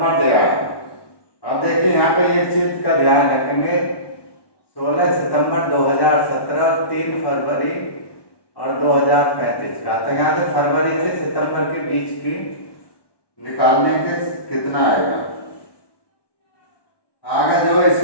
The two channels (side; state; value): right; late; 1.1 ms